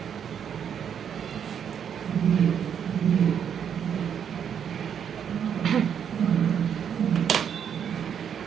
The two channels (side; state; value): left; quieter; 8.2 dB